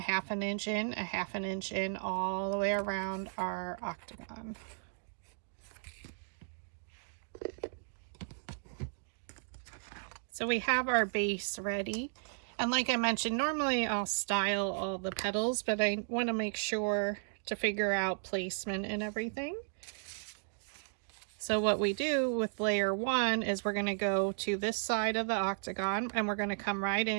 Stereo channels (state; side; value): silent; left; digital silence